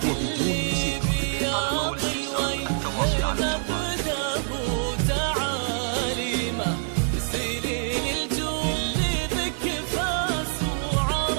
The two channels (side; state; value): left; silent; digital silence